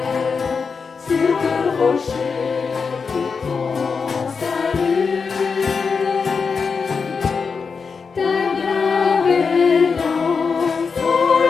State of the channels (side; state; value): right; quieter; 5.3 dB